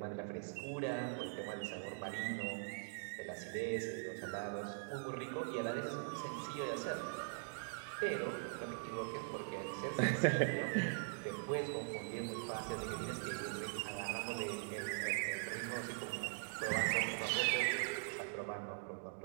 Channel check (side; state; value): left; silent; digital silence